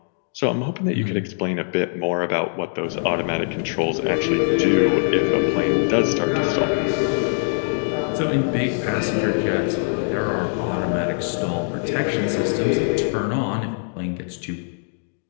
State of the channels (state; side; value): silent; right; digital silence